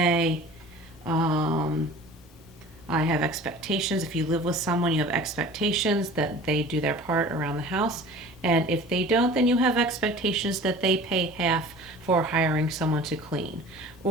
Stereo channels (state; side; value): noise; right; rumble, 29 dB below the sound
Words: I have expectations. If you live with someone, you have expectations that they do their part around the house. And if they don't, then you have expectations that they pay half for hiring someone to clean.